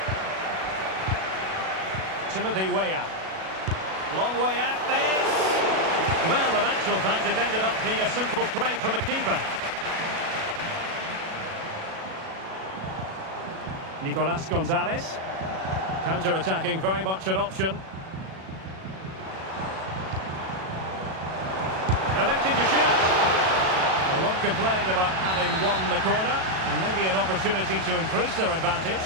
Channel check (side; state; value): left; late; 37 ms